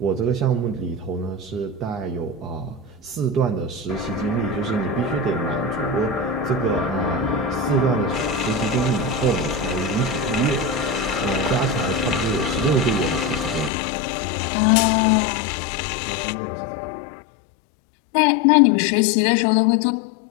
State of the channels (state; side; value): drops out; right; at 13.7 s